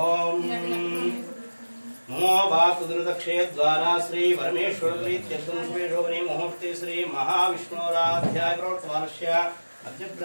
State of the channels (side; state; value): both; inverted; correlation -1.00